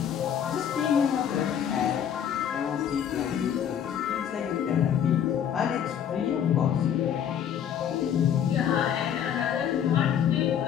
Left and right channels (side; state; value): right; quieter; 9.1 dB